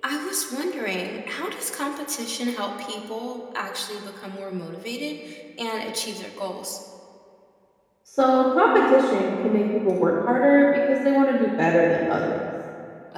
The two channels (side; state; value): both; identical; correlation 1.00